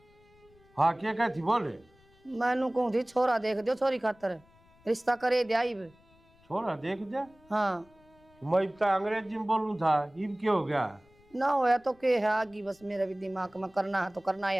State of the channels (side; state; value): left; noise; rumble, 29 dB below the sound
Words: हाँ क्या कहती बोले? मैनू कहूँ थी छोरा देख दो, छोरी खातर रिश्ता करे दिया इब। छोरा देख दे, हाँ मैं इब तक अंग्रेजी में बोलूं था, इब क्या हो गया? ना होया तो के है आगी, बस मेरे भी दिमाग में करना है तो करना है